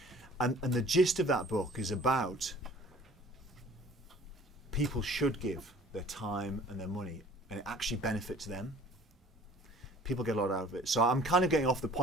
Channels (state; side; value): normal; both; correlation 0.51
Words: And the gist of that book is about people should give their time and their money, and it actually benefits them. People get a lot out of it. So I'm kind of getting off the